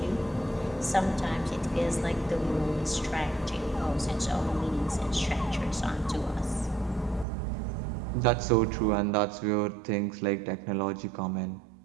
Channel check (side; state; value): left; drops out; at 7.2 s